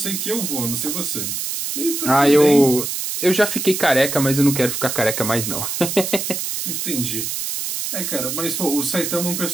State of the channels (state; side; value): noise; right; hiss, 3 dB below the sound